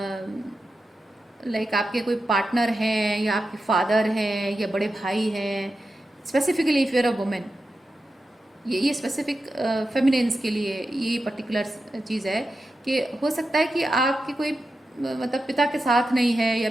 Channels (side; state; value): both; normal; correlation 0.90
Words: लाइक आपके कोई पार्टनर हैं, या आपके फादर हैं, या बड़े भाई हैं, specifically if you're a women, ये स्पेसिफिक फेमिनिन्स के लिए ये पर्टिकुलर चीज़ है कि हो सकता है कि आपके कोई मतलब पिता के साथ नहीं है, या